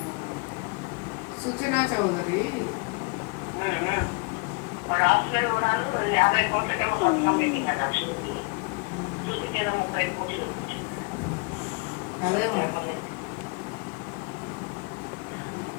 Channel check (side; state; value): right; quieter; 30.1 dB